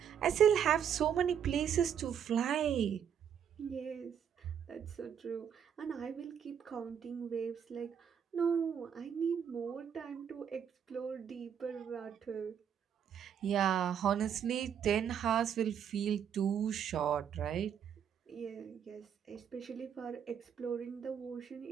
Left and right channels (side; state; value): left; quieter; 8.3 dB